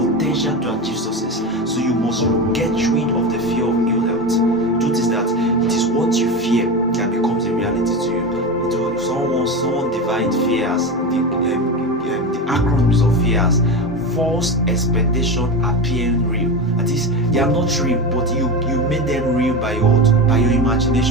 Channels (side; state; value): both; normal; correlation 0.21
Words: to achieve success. So you must get rid of the fear of ill health. The truth is that it is what you fear that becomes a reality to you. Someone divided fear as the acronyms of fear as false expectation appearing real. That is, they are not real, but you made them real by your